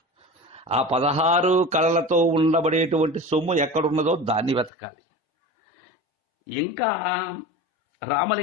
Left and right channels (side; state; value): right; drops out; at 4.7 s